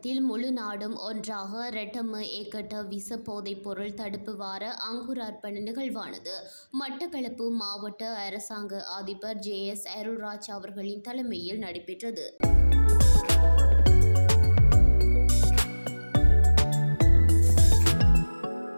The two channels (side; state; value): both; inverted; correlation -1.00